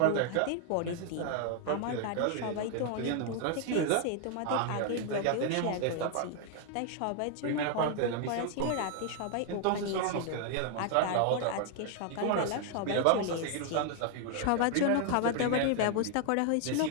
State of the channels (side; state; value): both; different; correlation 0.00